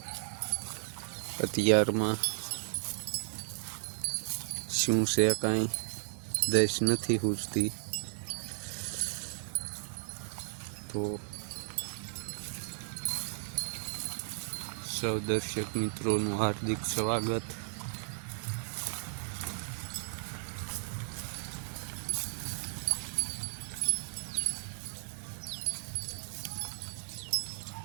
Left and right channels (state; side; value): silent; left; 55 dB below the other